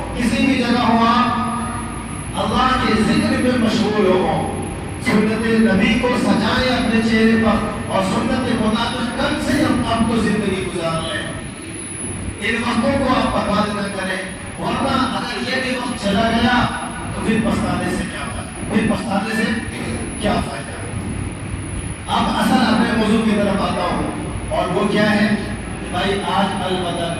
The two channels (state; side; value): identical; both; correlation 1.00